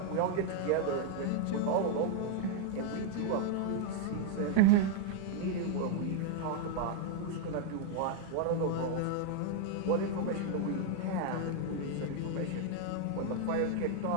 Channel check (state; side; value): different; both; correlation 0.00